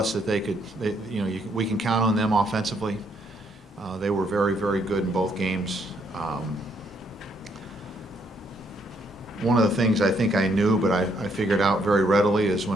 that we can count on them offensively. They were very, very good in both games. One of the things I think I knew, but I figured out very readily, is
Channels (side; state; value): both; normal; correlation 0.71